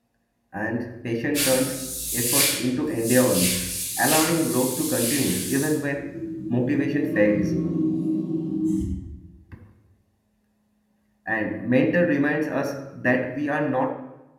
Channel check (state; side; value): identical; both; correlation 1.00